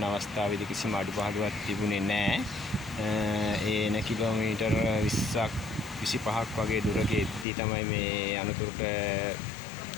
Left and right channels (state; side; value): drops out; right; at 7.5 s